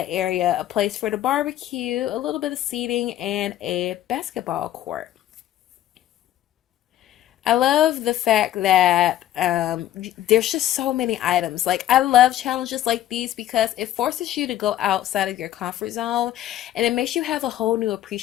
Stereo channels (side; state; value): right; quieter; 12.9 dB